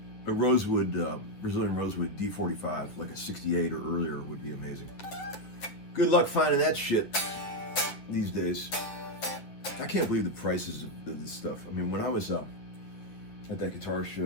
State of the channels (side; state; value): right; late; 9.7 ms